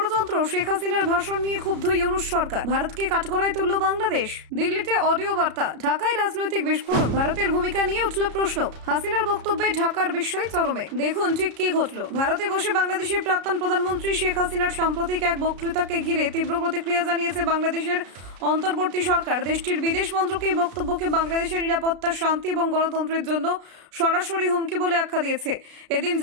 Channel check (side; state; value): left; late; 33 ms